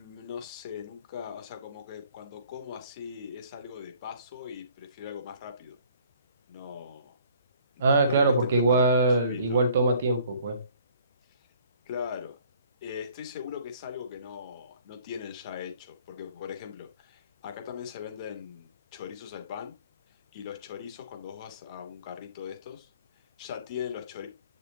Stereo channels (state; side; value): inverted; both; correlation -0.57